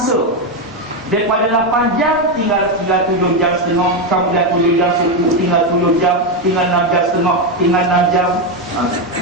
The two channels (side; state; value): both; normal; correlation 0.08